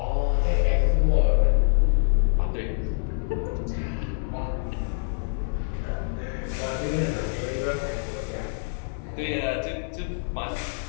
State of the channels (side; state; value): right; silent; 61 dB below the other